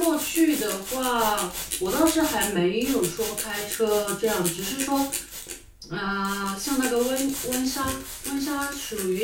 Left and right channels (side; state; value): both; identical; correlation 1.00